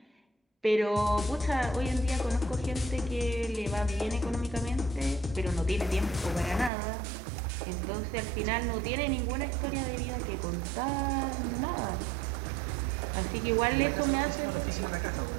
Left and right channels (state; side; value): drops out; left; at 6.7 s